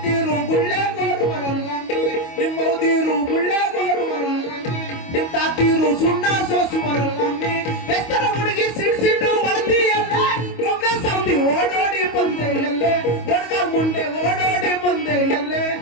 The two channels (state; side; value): late; right; 25 ms